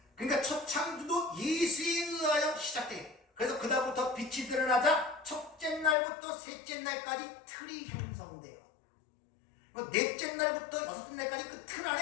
그러니까 첫 창조도 예수에 의하여 시작돼요. 그래서 그다음부터 빛이 드러나자 첫째 날부터 셋째 날까지 틀이 형성돼요. 넷째 날부터 여섯째 날까지 그 틀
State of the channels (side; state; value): right; drops out; at 6.0 s